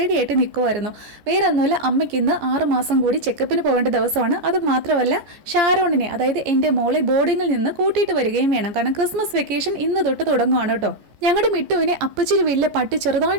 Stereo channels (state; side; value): late; left; 14 ms